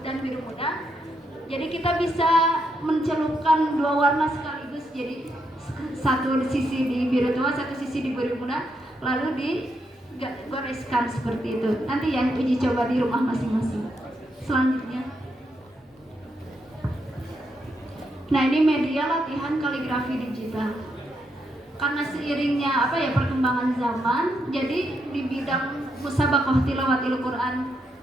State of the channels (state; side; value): normal; both; correlation 0.80